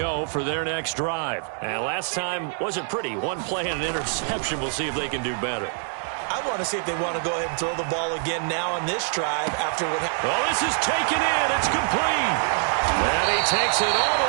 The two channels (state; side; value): silent; left; 58 dB below the other